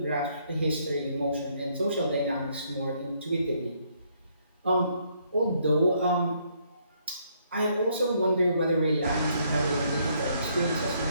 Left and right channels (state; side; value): inverted; both; correlation -0.70